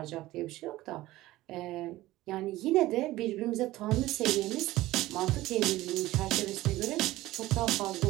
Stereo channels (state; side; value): quieter; left; 17.1 dB